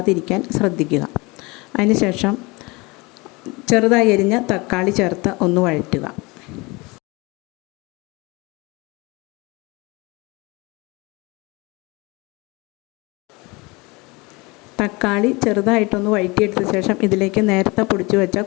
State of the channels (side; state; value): right; quieter; 25.2 dB